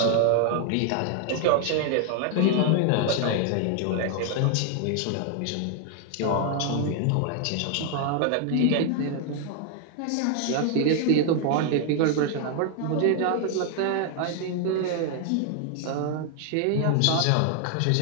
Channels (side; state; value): both; different; correlation 0.00